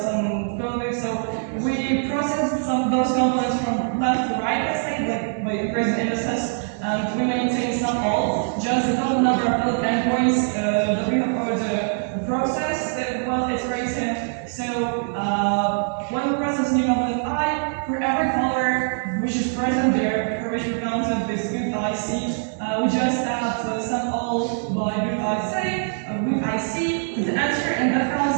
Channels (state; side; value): silent; left; 63 dB below the other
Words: coding. So we process some of those components from left to right, let's say, like by increasing indices, and we maintain some all, just the total number of valid endpoints that we have already processed while iterating. So when we process new component I, for every color which is present there, for which we counted this root IC, we just add sum all by root IC to the answer, and that